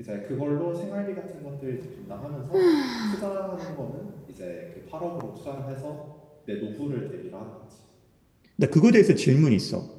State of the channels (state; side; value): identical; both; correlation 1.00